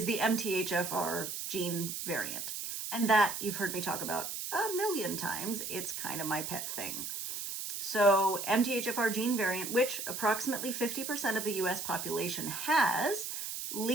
the MTHFR gene variant. And that you've heard me talk about a million times. It's kind of my pet thing. So MTHFR gene variant, which approximately 50% of the US population has,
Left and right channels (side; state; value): right; noise; hiss, 5 dB below the sound